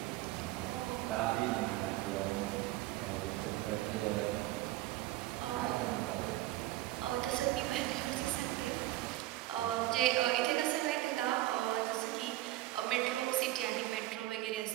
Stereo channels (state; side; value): quieter; left; 16.4 dB